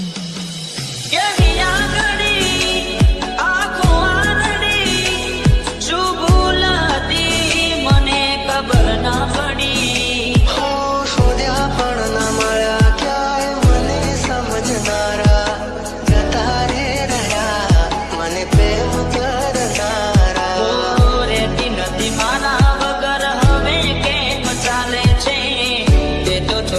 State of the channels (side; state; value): both; identical; correlation 1.00